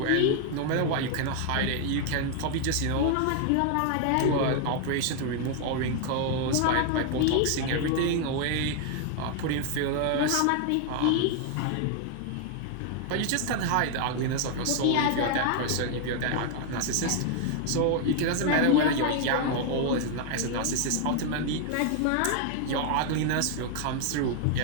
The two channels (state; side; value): different; both; correlation 0.00